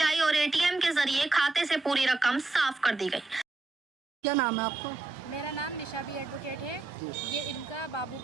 और एटीएम के जरिए खाते से पूरी रकम साफ कर दी गई। क्या नाम है आपका? मेरा नाम निशा बी एडवोकेट है। ये इनका बाबू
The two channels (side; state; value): left; quieter; 3.4 dB